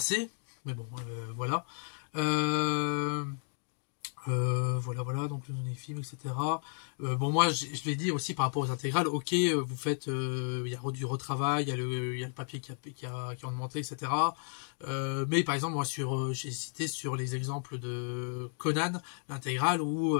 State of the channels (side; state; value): right; silent; 56 dB below the other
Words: mais bon, voilà. Voilà, donc les films, etc. Bon, moi, je l'ai dit aussi par rapport aux intégrales, ok, vous faites, il y a du retravail, il y a le papier qui a augmenté, etc. Mais par exemple, moi, j'ai cité sur les exemples de Conan, l'intégrale, où